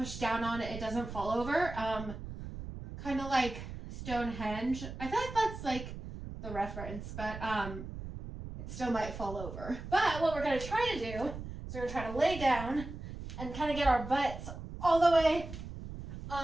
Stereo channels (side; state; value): right; noise; rumble, 10 dB below the sound